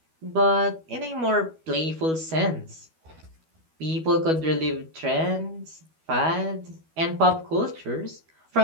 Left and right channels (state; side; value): late; left; 12 ms